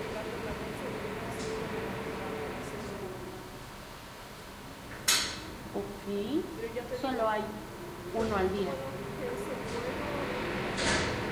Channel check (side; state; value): both; identical; correlation 1.00